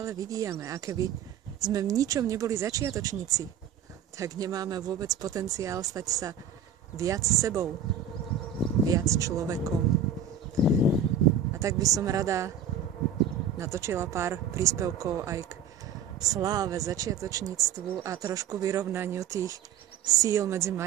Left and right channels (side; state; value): left; quieter; 7.6 dB